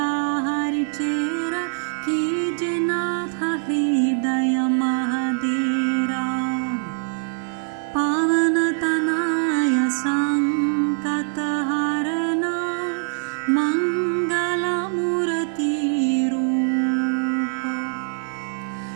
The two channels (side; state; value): left; silent; digital silence